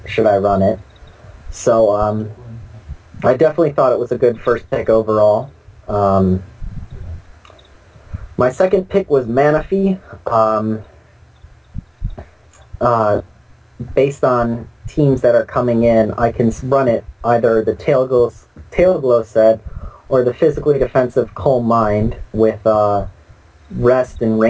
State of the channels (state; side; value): identical; both; correlation 1.00